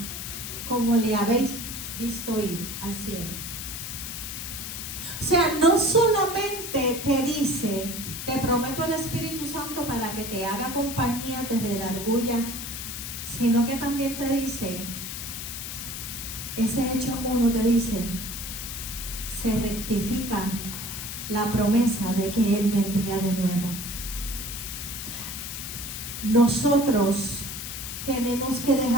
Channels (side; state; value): left; noise; hiss, 7 dB below the sound